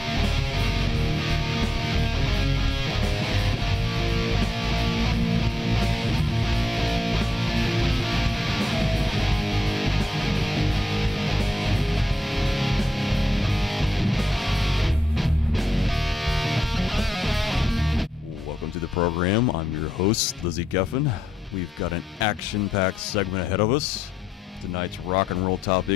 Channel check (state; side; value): normal; both; correlation 0.83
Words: Program. I'm your host, Slizzie Geffen. We've got an action-packed segment ahead of us. Tonight's rock and roll